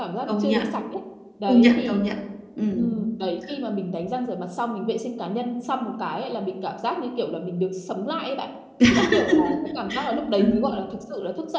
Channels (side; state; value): both; identical; correlation 1.00